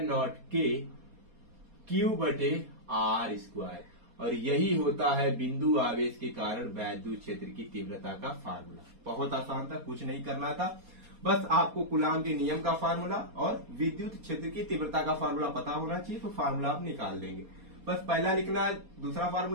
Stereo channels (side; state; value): left; late; 4.2 ms